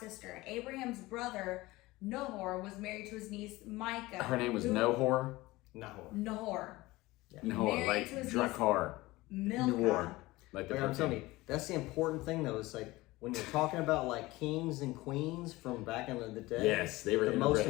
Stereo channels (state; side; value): quieter; right; 19.9 dB